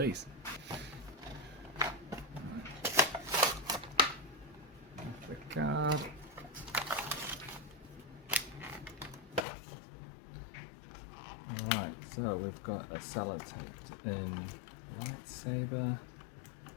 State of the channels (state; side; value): drops out; right; at 9.5 s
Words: The card. Alright, so we've got a sellotaped in lightsaber.